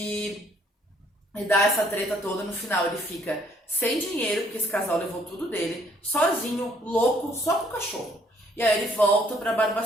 dá essa treta toda. No final ele fica sem dinheiro, porque esse casal levou tudo dele. Sozinho, louco, só com o cachorro. E aí ele volta para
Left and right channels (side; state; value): both; normal; correlation 0.65